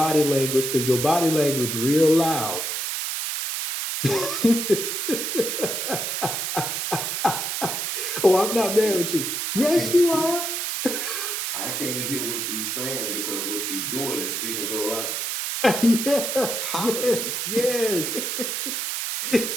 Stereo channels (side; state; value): right; noise; hiss, 2 dB below the sound